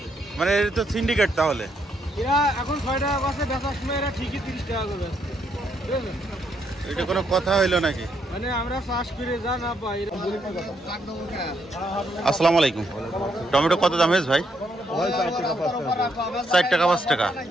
মানে এটা তো সিন্ডিকেট তাহলে। এরা এখন 6 টাকা আছে, বেচার সময় এরা ঠিকই 30 টাকা করে বেচে। বুঝলেন? এটা কোনো কথা হইলো নাকি? মানে আমরা চাষ করে যা না পাই। আসসালামু আলাইকুম। টমেটো কত দাম হয়েছে ভাই? 4 টাকা 5 টাকা।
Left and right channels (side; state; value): both; normal; correlation 0.75